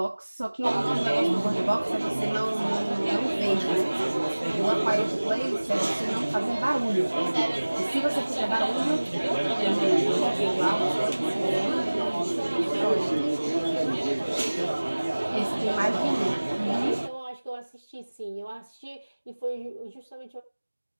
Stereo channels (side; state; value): both; inverted; correlation -1.00